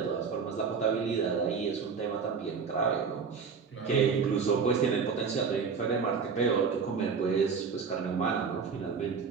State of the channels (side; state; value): left; quieter; 5.7 dB